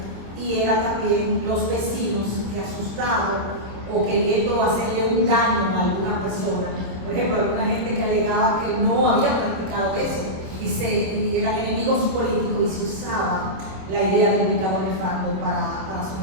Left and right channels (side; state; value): left; late; 27 ms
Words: y era también los vecinos que asustados o queriendo hacerle un daño a alguna persona. Por ejemplo, alguna gente que alegaba que no había practicado eso y eran enemigos políticos y se usaba la idea del pecado nefando para